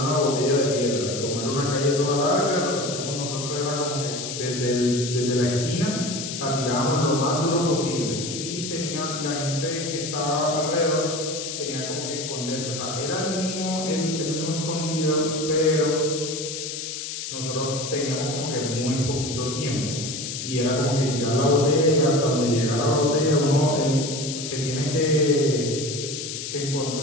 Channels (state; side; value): noise; left; hiss, 6 dB below the sound